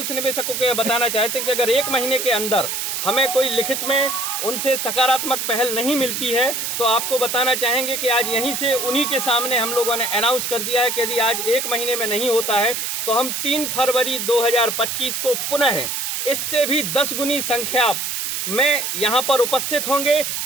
निवेशकों को यह बताना चाहते हैं कि अगर 1 महीने के अंदर हमें कोई लिखित में उनसे सकारात्मक पहल नहीं मिलती है तो आपको बताना चाहेंगे कि आज यहीं से उन्हीं के सामने हम लोगों ने अनाउंस कर दिया है कि यदि आज 1 महीने में नहीं होता है तो हम 3 फरवरी 2025 को पुनः इससे भी 10 गुनी संख्या में यहाँ पर उपस्थित होंगे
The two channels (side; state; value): right; noise; hiss, 2 dB below the sound